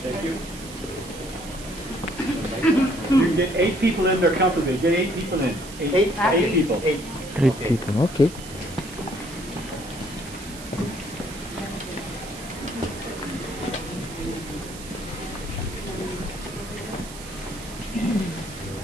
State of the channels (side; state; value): right; noise; hiss, 15 dB below the sound